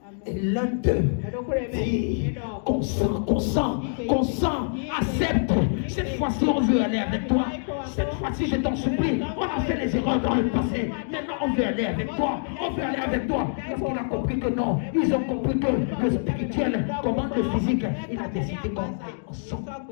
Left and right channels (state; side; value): silent; right; digital silence